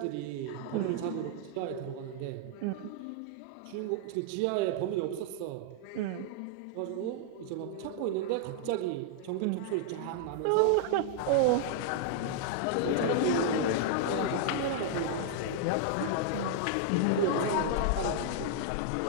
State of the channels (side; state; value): both; different; correlation -0.01